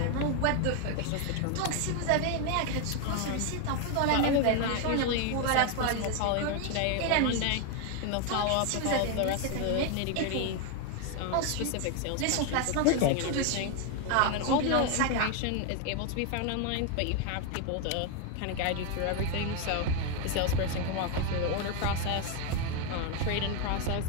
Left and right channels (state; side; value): different; both; correlation 0.01